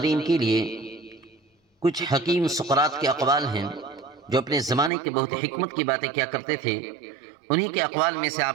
کے لیے کچھ حکیم سقراط کے اقوال ہیں جو اپنے زمانے کے بہت حکمت کی باتیں کیا کرتے تھے۔ انہی کے اقوال میں سے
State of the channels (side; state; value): left; drops out; at 4.9 s